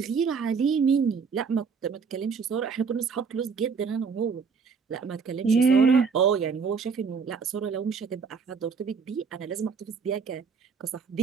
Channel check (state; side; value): quieter; left; 5.5 dB